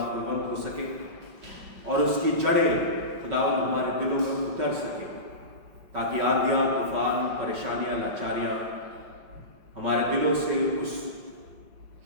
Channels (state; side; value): late; left; 5.2 ms